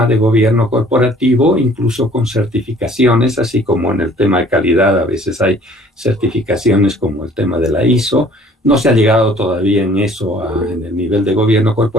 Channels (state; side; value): normal; both; correlation 0.55